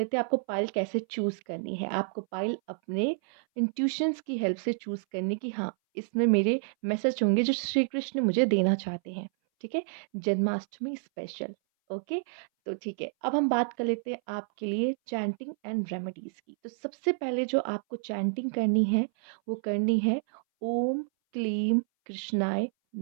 हैं आपको पाइल कैसे चूज करनी है। आपको पाइल अपने इंट्यूशंस की हेल्प से चूज करनी कि हाँ, इसमें मेरे मैसेज होंगे जो श्री कृष्ण मुझे देना चाहते हैं। ठीक है, जन्माष्टमी स्पेशल। ओके, तो ठीक है, अब हम बात कर लेते हैं आपके लिए चैंटिंग एंड रेमेडीज की। तो सबसे पहले जो आपको चैंटिंग करनी है वो करनी है ओम क्लीम कृष्णाय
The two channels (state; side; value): silent; left; 58 dB below the other